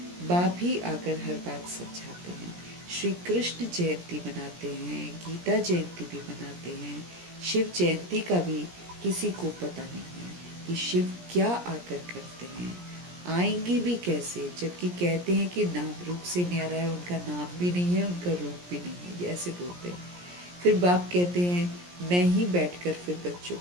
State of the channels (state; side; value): late; left; 17 ms